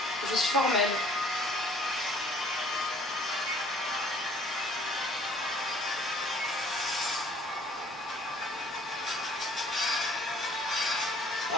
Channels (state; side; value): normal; both; correlation 0.55